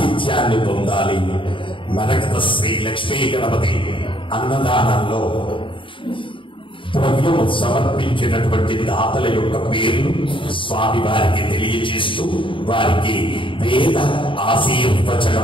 పొందాలి. మరకత శ్రీ లక్ష్మీ గణపతి అన్నదానంలో ద్రవ్యము సమర్పించినటువంటి దాతల యొక్క పేర్లు స్వామి వారికి తెలియజేస్తూ వారికి వేద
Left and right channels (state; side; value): late; right; 0.25 ms